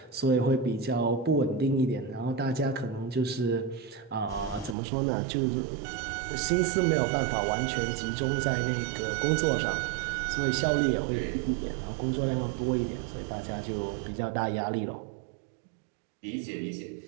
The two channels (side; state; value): left; drops out; at 4.8 s